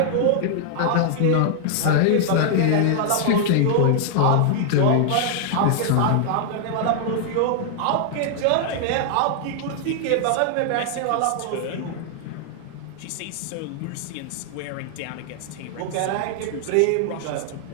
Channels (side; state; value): both; different; correlation -0.01